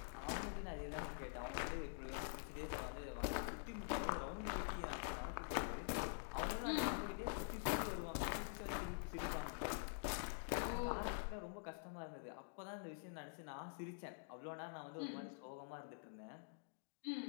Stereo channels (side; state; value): right; silent; digital silence